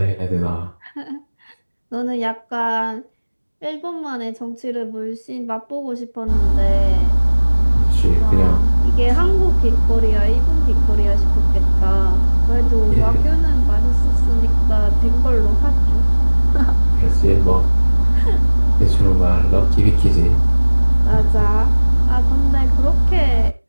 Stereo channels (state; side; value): inverted; both; correlation -1.00